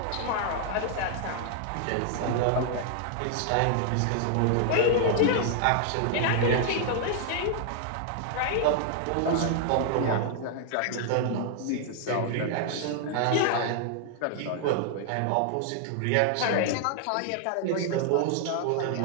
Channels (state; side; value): different; both; correlation 0.00